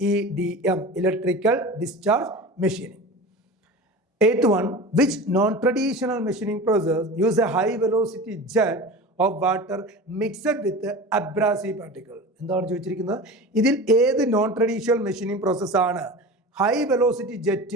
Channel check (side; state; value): both; normal; correlation 0.33